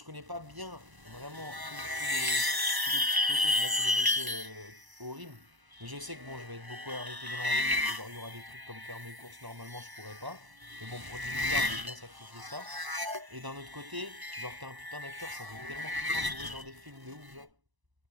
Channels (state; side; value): late; left; 1.0 ms